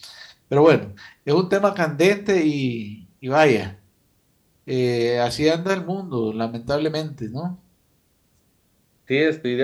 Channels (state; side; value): identical; both; correlation 1.00